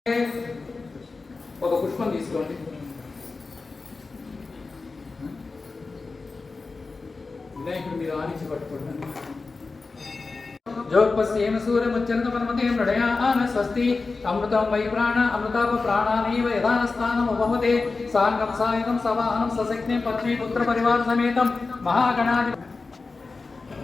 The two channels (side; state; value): right; quieter; 4.0 dB